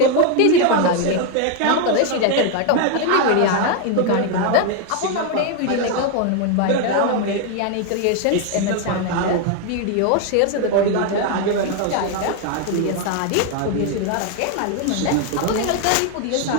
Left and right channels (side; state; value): both; different; correlation 0.01